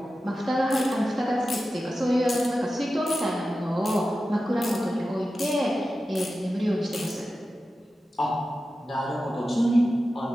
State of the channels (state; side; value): normal; both; correlation 0.93